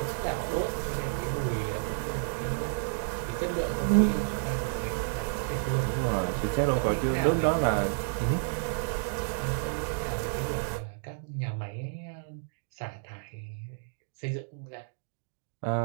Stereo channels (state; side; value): silent; left; digital silence